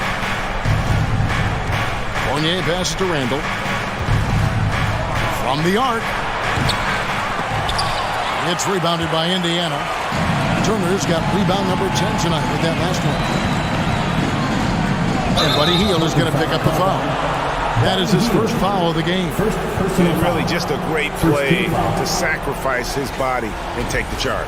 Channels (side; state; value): both; identical; correlation 1.00